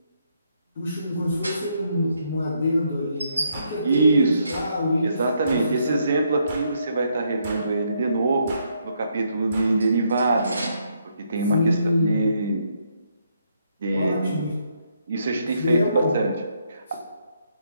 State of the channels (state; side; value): inverted; both; correlation -0.75